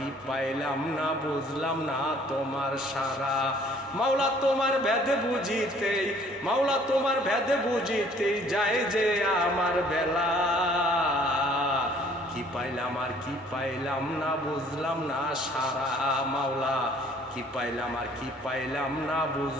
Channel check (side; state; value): both; normal; correlation 0.57